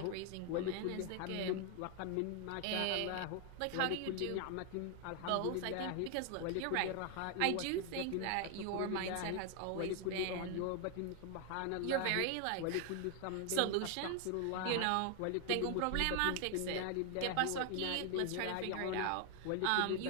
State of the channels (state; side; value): different; both; correlation 0.00